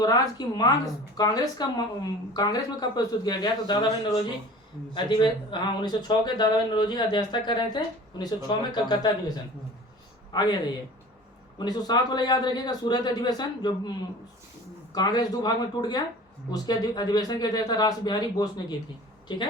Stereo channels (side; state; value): both; normal; correlation 0.42